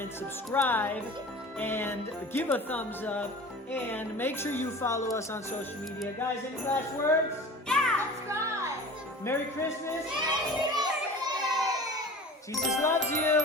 Subscribe and give a thumbs up. And make sure you follow us on social media. Guys, any last words? Yeah, subscribe. Merry Christmas. Merry Christmas. Jesus loves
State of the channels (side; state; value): both; normal; correlation 0.39